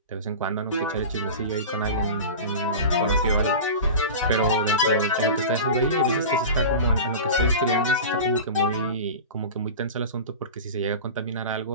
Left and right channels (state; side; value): inverted; both; correlation -0.31